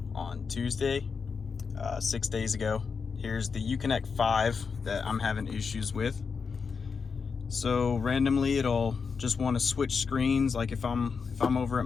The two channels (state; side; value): quieter; right; 5.5 dB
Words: on Tuesday, 6 days ago. Here's the Uconnect5 that I'm having issues with. So randomly it'll just want to switch screens. Like if I'm over at